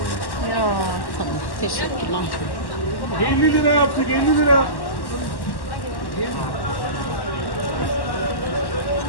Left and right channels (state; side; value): late; right; 1.1 ms